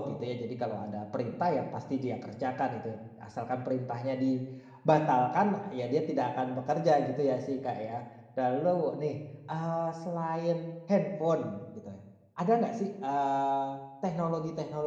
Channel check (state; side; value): identical; both; correlation 1.00